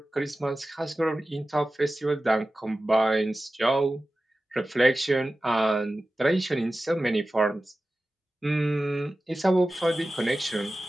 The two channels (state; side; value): normal; both; correlation 0.95